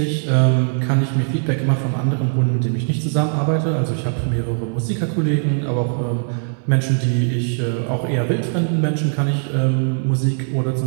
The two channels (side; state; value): left; silent; 65 dB below the other